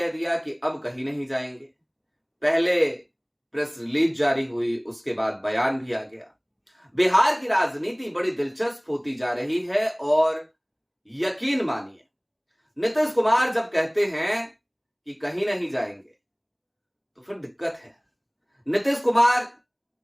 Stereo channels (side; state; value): both; identical; correlation 1.00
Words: दिया कि अब कहीं नहीं जाएंगे। पहले प्रेस रिलीज जारी हुई, उसके बाद बयान भी आ गया। बिहार की राजनीति बड़ी दिलचस्प होती जा रही है, और यकीन मानिए, नीतीश कुमार जब कहते हैं कि कहीं नहीं जाएंगे तो फिर दिक्कत है। नीतीश कुमार